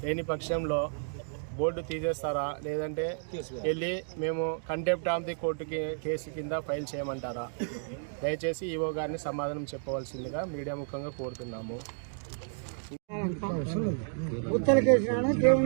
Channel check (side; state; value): left; silent; digital silence